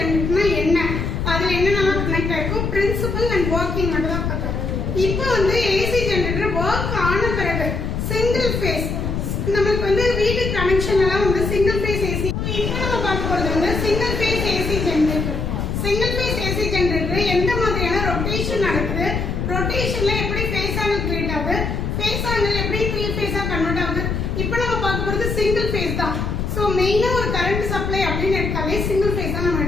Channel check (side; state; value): left; noise; rumble, 2 dB below the sound